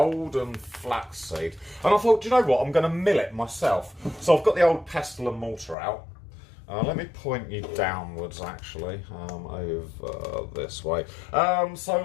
flaxseed. And I thought, do you know what? I'm going to mill it myself. So I've got the old pestle and mortar out. Let me point you downwards, actually, over this way.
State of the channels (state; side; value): drops out; right; at 5.8 s